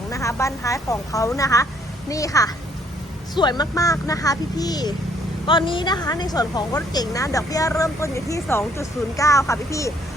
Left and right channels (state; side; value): normal; both; correlation 0.65